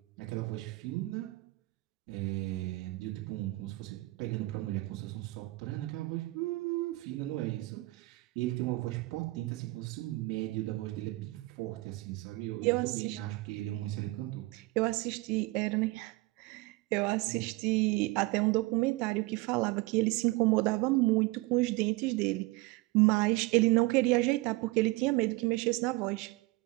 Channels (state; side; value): quieter; left; 21.8 dB